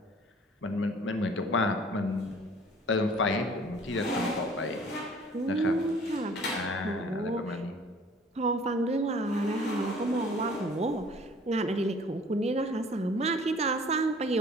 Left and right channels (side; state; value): both; normal; correlation 0.52